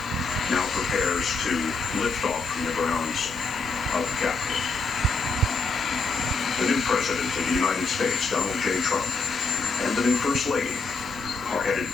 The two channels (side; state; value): right; quieter; 4.0 dB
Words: now prepares to lift off from the grounds of the Capitol. The new President of the United States, Donald J. Trump, and the new First Lady are headed